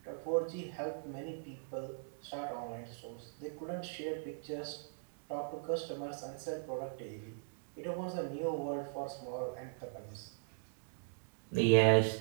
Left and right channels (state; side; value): silent; left; digital silence